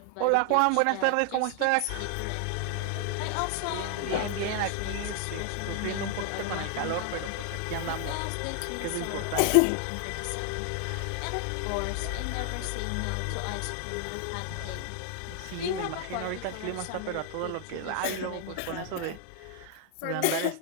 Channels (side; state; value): both; different; correlation 0.00